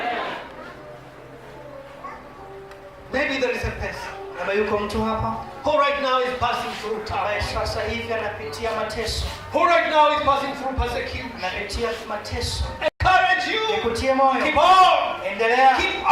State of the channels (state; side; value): identical; both; correlation 1.00